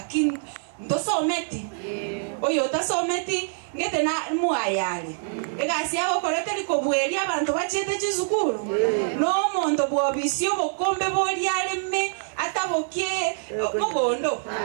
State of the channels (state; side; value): silent; left; 62 dB below the other